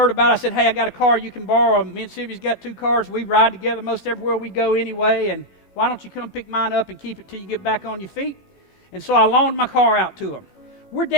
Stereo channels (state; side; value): late; right; 15 ms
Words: about it. I said, hey, I got a car you can borrow. Me and Sylvia's got 2 cars. We ride together most everywhere we go anyway, and why don't you come pick mine up and keep it till you get back on your feet? And so I loaned my car out to them. We're